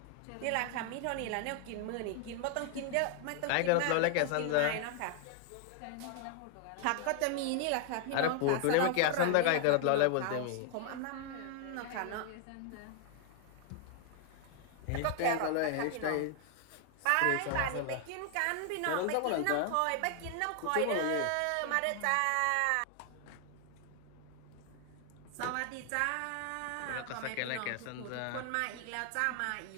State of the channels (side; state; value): both; different; correlation 0.00